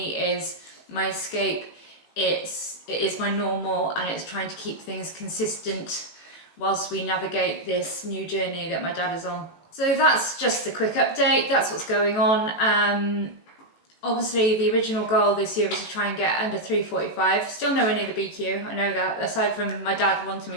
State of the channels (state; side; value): late; right; 18 ms